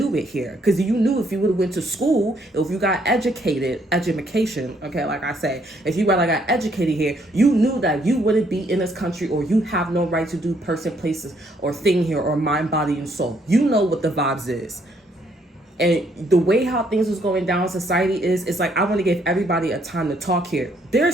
it here. Because you knew if you would have went to school, if you got education, okay, like I say, if you got educated here, you knew that you wouldn't be in this country, or you have no right to do person, places, or thing here, or mind, body, and soul. You know what the vibes is. And the way how things was going down in society it's like, I want to give everybody a time to talk here. There are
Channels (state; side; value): normal; both; correlation 0.69